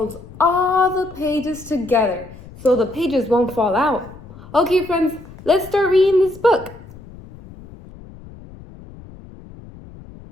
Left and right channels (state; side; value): noise; left; rumble, 18 dB below the sound